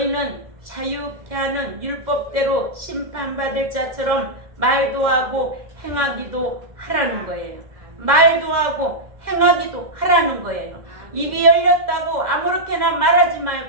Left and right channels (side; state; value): left; late; 1.7 ms